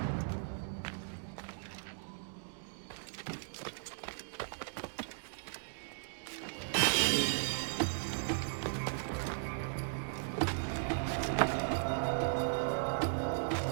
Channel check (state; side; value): silent; left; digital silence